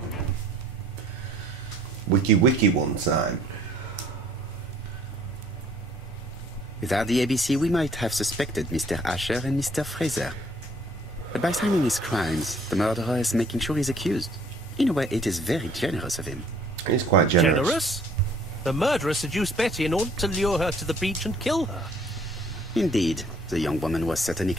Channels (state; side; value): normal; both; correlation 0.59